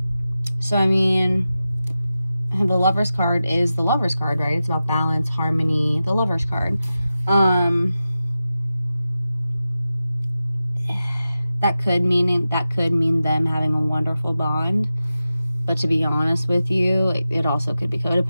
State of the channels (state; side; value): inverted; both; correlation -0.93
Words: So, I mean, the Lover's card is the Lover's card, right? It's about balance, harmony, the Lover's card. That could mean them having a wonderful bond. But to be honest with you, it also could be